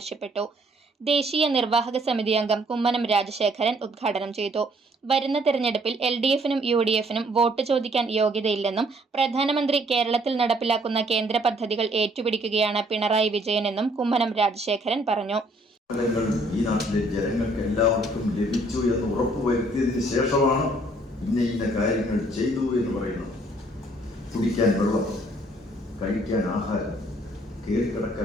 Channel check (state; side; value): normal; both; correlation 0.64